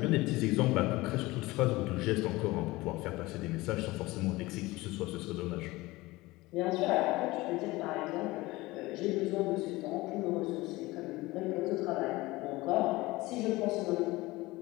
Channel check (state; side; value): quieter; right; 20.4 dB